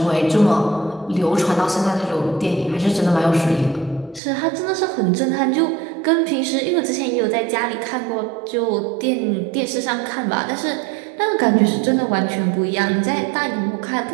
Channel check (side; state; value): left; drops out; at 4.2 s